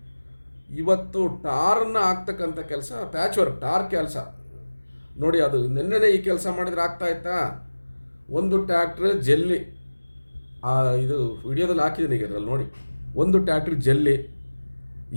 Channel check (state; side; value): inverted; both; correlation -1.00